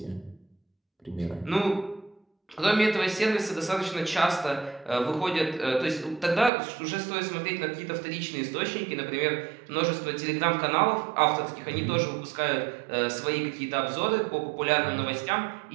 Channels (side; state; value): left; drops out; at 6.5 s